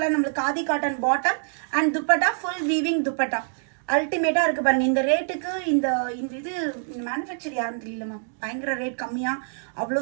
நம்மளுக்கு khadi cotton bottom and dupatta full weaving dupatta. அல்டிமேட்டாக இருக்குது பாருங்கள். இந்த ரேட்டுக்கு இந்த இது மேனுஃபேக்சர் யாரும் தெரியலம்மா, பயங்கர ரேட் கம்மியாக அவ்வளோ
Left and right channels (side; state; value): left; silent; digital silence